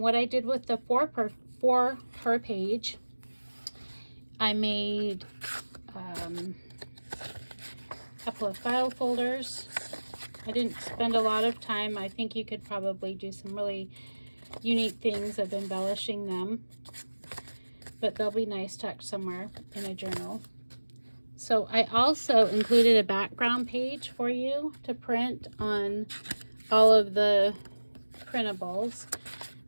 I did with the 4 per page, I made a couple of file folders. I didn't spend a lot of time. I think you could probably do some really unique things of embellishing them, but they'll be nice tucked somewhere in a journal. So I also included a background page for you to print on all of the printables.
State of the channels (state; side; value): inverted; both; correlation -1.00